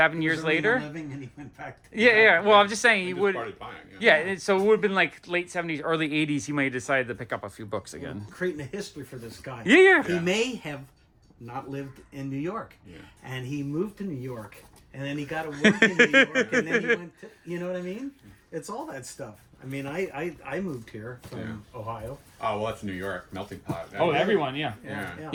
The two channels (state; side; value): identical; both; correlation 1.00